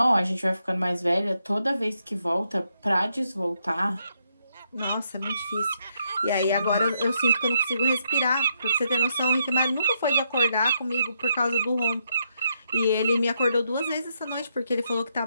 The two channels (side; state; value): both; inverted; correlation -0.78